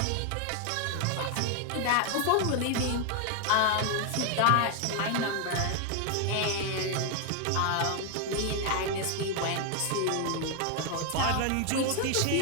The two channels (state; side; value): different; both; correlation 0.01